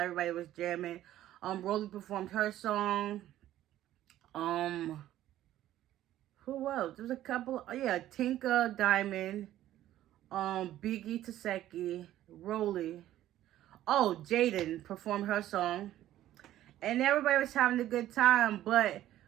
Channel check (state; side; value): quieter; left; 13.3 dB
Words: Everybody was jamming. Rolly performed her song. Who else? There's a couple. Tinka, Diamond, Biggie, Taseki, Rolly. Oh, Jaden performed her song. And everybody was having a good time. But